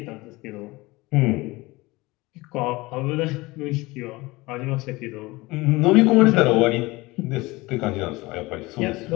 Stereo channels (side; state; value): right; quieter; 21.7 dB